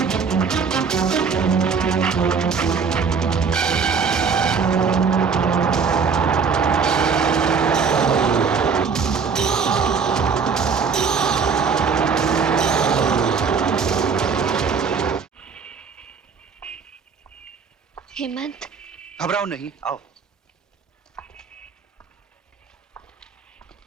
हेमंत, घबराओ नहीं, आओ।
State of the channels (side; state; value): left; quieter; 5.7 dB